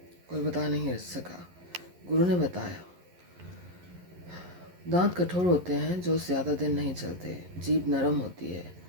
कोई बता नहीं सका. गुरु ने बताया, दांत कठोर होते हैं जो ज़्यादा दिन नहीं चलते. जीभ नरम होती है,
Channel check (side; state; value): left; late; 11 ms